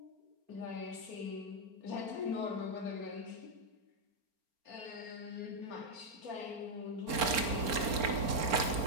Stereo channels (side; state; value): left; late; 4.4 ms